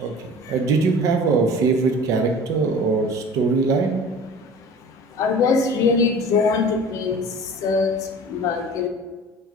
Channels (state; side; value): normal; both; correlation 0.41